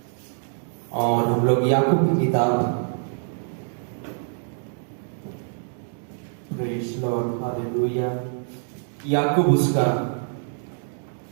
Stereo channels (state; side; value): silent; left; digital silence